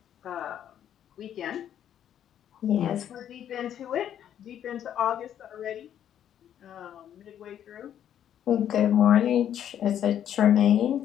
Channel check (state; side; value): quieter; right; 10.1 dB